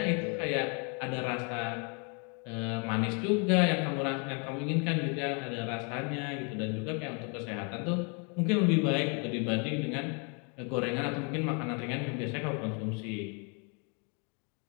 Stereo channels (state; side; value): quieter; right; 35.9 dB